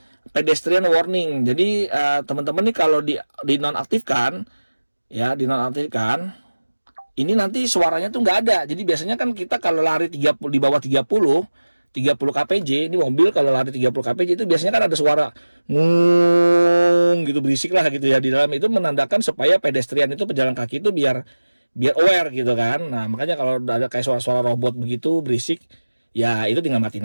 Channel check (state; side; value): inverted; both; correlation -1.00